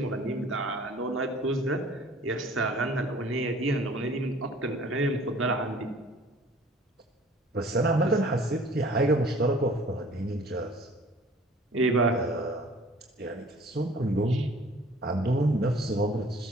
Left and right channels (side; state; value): both; normal; correlation 0.51